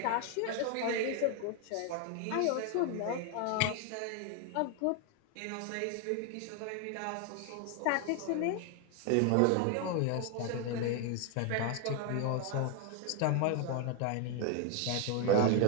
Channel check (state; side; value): different; both; correlation 0.01